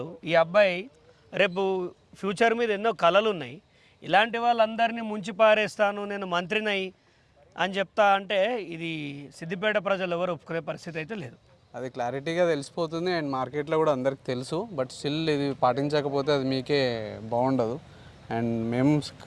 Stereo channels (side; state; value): both; identical; correlation 1.00